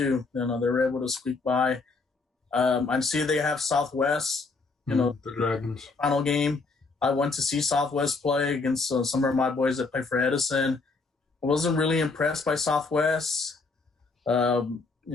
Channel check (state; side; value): quieter; right; 4.0 dB